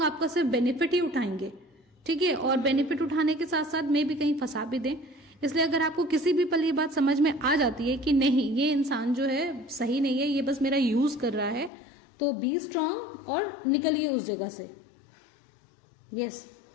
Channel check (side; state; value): right; drops out; at 11.7 s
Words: आपका सिर्फ बेनिफिट ही उठाएंगे, ठीक है, और बेनिफिट उठाने के साथ साथ मे भी कहीं फंसा भी दें। इसलिए अगर आपको किसी भी पल ये बात समझ में आ जाती है कि नहीं ये इंसान जो है सही नहीं है, ये बस मेरा यूज कर रहा है, तो बी स्ट्रांग और निकलिए उस जगह से। यस